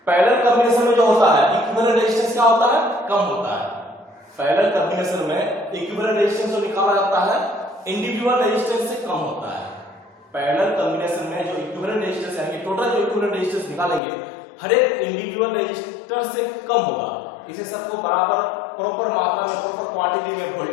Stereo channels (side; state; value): right; drops out; at 14.0 s